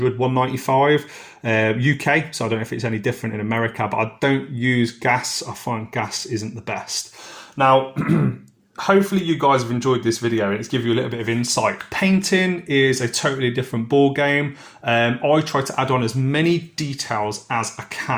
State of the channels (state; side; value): identical; both; correlation 1.00